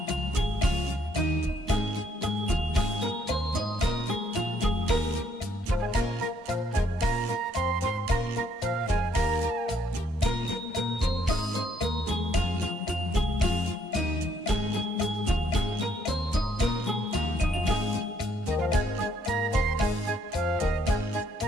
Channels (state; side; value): normal; both; correlation 0.69